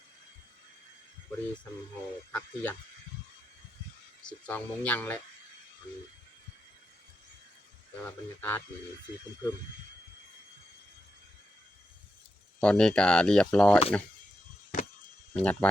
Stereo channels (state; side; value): normal; both; correlation 0.86